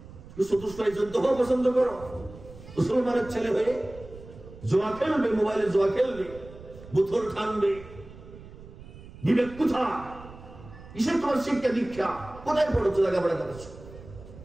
চতুষ্পায় যুদ্ধ হওয়া পছন্দ করো? মুসলমানের ছেলে হয়ে জোয়া খেলবে, মোবাইলে জোয়া খেলবে, বোতল টানবে, বিবেক কোথায়? কিসের তোমার শিক্ষা দীক্ষা? কোথায় পড়েছো, লেখাপড়া করেছো?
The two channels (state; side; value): noise; right; rumble, 17 dB below the sound